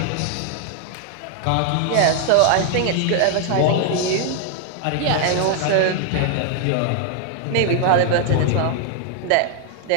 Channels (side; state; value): both; different; correlation 0.00